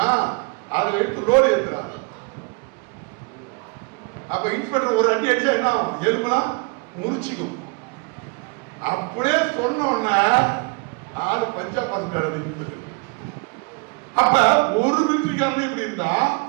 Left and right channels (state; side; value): quieter; left; 31.4 dB